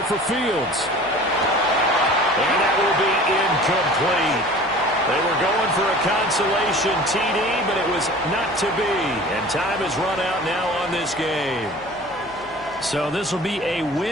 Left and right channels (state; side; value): noise; left; hum, 25 dB below the sound